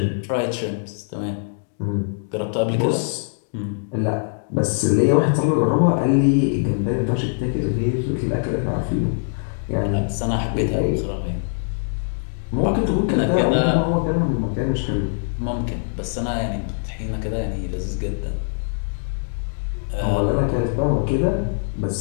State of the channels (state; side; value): silent; right; digital silence